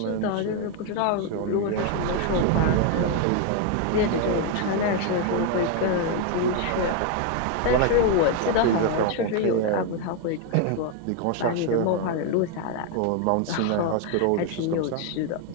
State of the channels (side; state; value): both; different; correlation 0.01